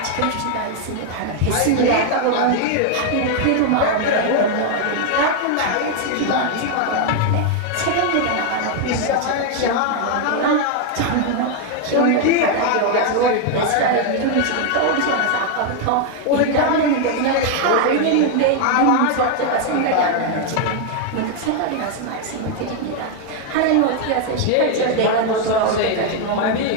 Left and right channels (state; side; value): different; both; correlation 0.01